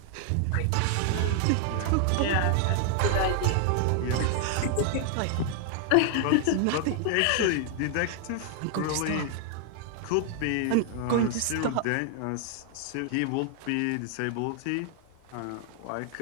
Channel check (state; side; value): different; both; correlation 0.00